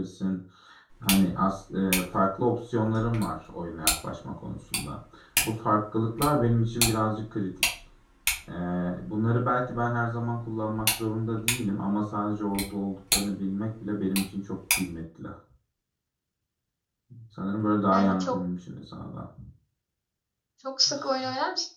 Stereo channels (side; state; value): both; identical; correlation 1.00